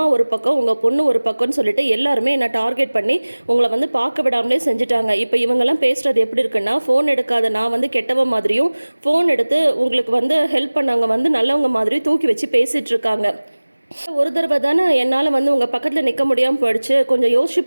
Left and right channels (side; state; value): both; inverted; correlation -1.00